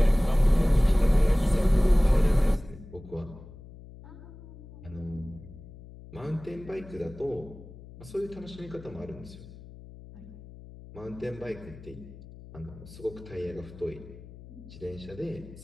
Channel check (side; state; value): left; noise; hum, 17 dB below the sound